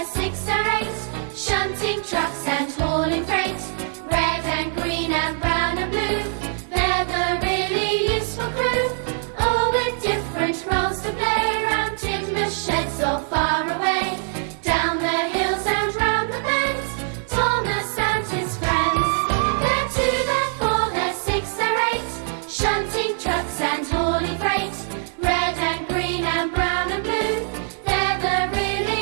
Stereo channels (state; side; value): silent; left; digital silence